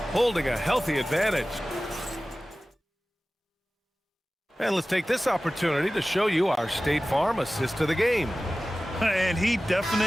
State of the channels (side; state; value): both; normal; correlation 0.97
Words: holding a healthy advantage. And let's take this opportunity to show you our State Farm assist to the game. And he